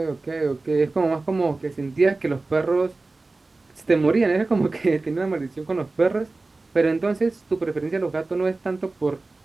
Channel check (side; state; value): left; quieter; 3.4 dB